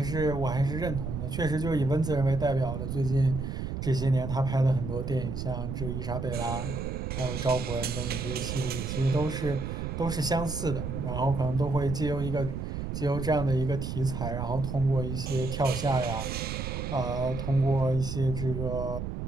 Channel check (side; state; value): right; noise; rumble, 4 dB below the sound